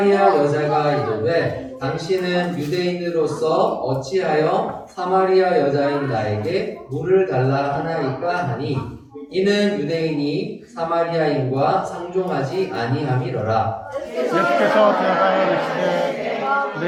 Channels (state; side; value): identical; both; correlation 1.00